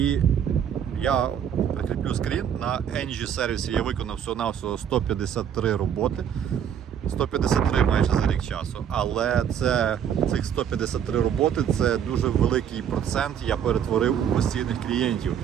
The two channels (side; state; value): left; quieter; 8.8 dB